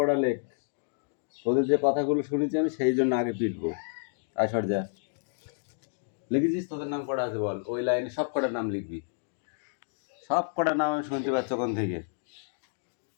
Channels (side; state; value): right; silent; digital silence